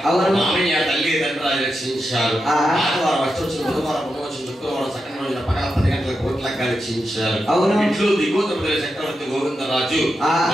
మామయ్య తల్లి తండ్రి రక్షించారు. ఆదివారం వచ్చి బుధవారం పునవచ్చి శుక్రవారం సకల రోజున పగల 10 గంటల కోట్ల రక్షించారు. ఇంట్లో దిగోతపతి చక్రవర్తి గోవిందరాజు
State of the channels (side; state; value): both; normal; correlation 0.88